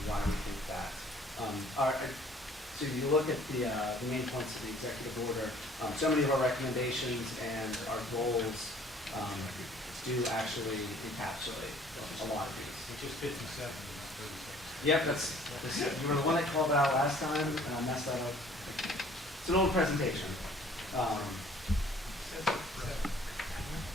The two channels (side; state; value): both; normal; correlation 0.55